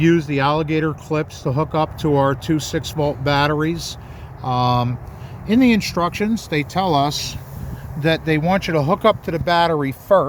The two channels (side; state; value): both; identical; correlation 1.00